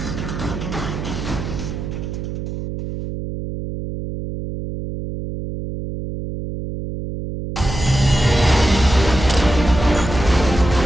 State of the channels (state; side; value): noise; right; hum, 6 dB below the sound